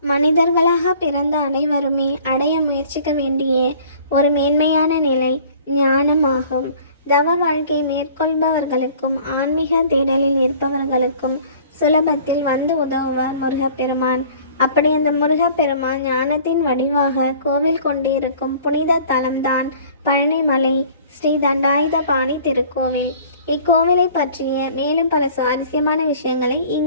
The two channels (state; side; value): inverted; both; correlation -0.50